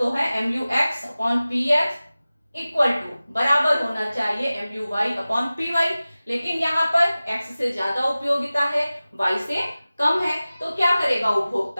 है MUX/PX इक्वल टू बराबर होना चाहिए MUY/PY, लेकिन यहाँ पर x से ज्यादा उपयोगिता है, y से कम है, तो क्या करेगा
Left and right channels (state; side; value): inverted; both; correlation -0.97